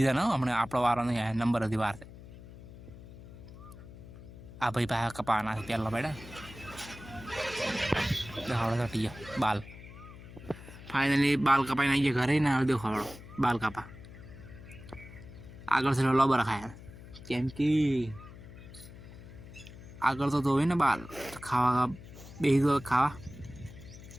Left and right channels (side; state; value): left; noise; hum, 16 dB below the sound